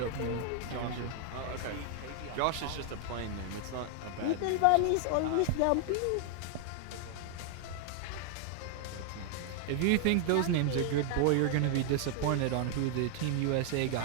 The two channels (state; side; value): different; both; correlation 0.00